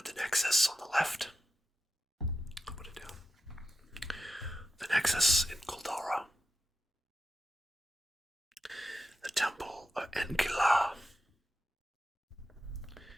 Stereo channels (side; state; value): both; normal; correlation 0.88